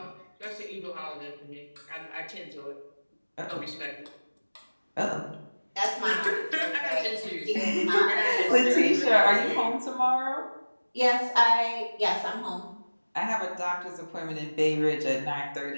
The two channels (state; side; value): inverted; both; correlation -1.00